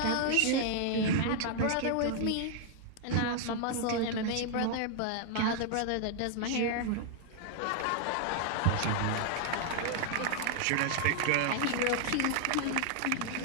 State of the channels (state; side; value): different; both; correlation 0.00